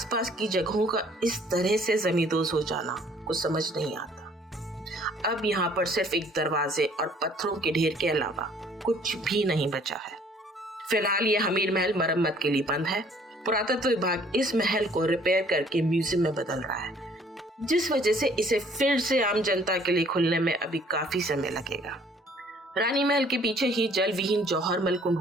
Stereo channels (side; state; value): both; normal; correlation 0.58